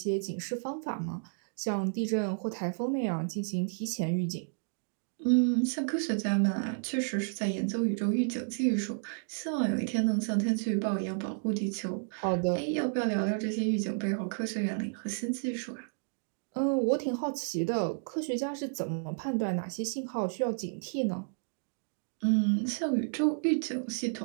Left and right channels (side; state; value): left; silent; digital silence